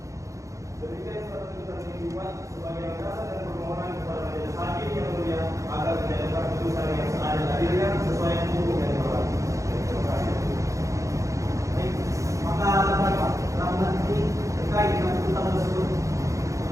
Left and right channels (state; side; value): late; left; 0.15 ms